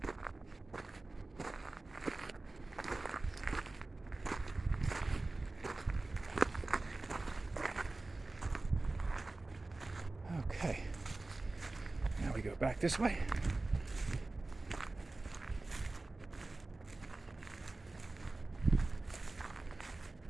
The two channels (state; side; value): quieter; left; 3.1 dB